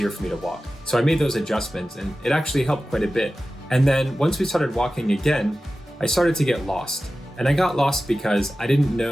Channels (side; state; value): both; normal; correlation 0.95